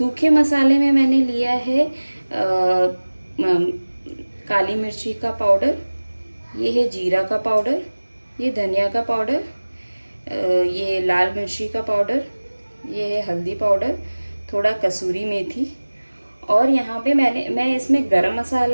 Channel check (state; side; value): inverted; both; correlation -1.00